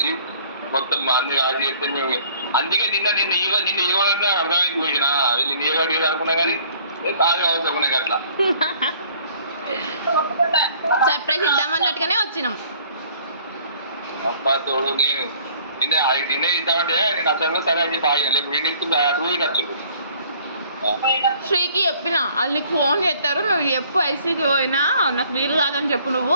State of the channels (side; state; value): both; inverted; correlation -0.56